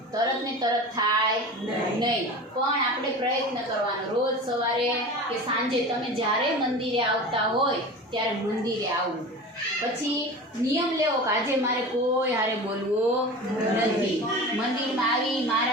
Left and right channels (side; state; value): both; normal; correlation 0.33